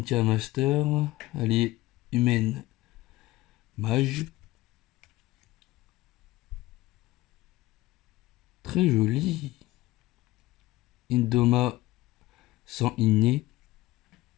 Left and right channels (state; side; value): quieter; right; 18.1 dB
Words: Master. Allié humaine. Mage. Très joli. Indoma sans inné.